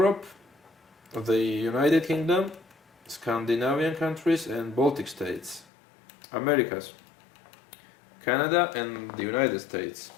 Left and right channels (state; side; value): drops out; right; at 5.7 s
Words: the United Kingdom, Scandinavian countries and Baltic states. Americas, Canada and the United States.